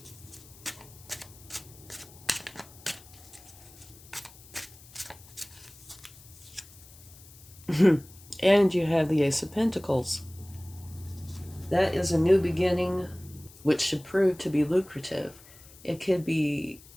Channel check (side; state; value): left; noise; hiss, 22 dB below the sound